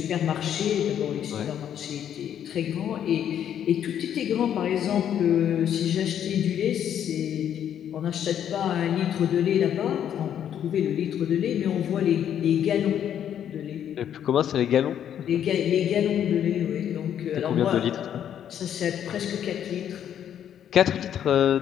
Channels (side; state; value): right; quieter; 9.7 dB